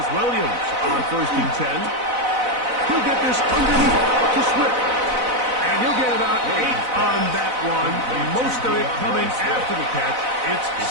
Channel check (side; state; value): left; late; 4.0 ms